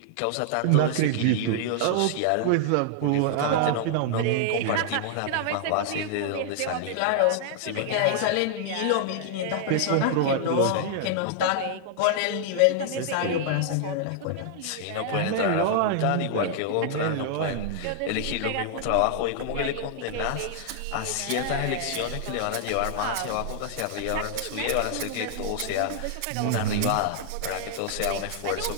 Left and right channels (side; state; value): both; different; correlation -0.01